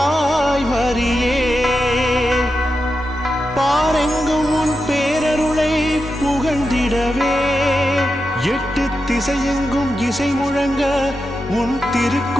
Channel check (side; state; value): both; normal; correlation 0.89